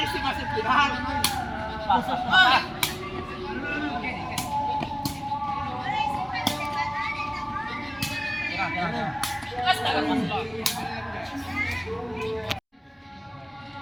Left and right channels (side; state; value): both; identical; correlation 1.00